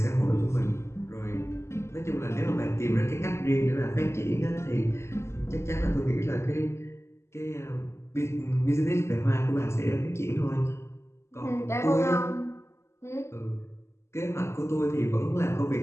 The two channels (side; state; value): right; late; 0.13 ms